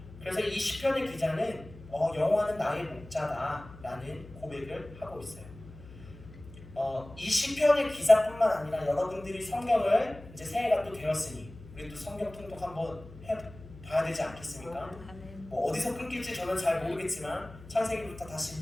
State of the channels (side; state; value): left; noise; hum, 18 dB below the sound